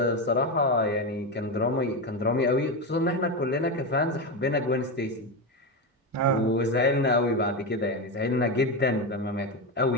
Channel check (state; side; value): normal; both; correlation 0.14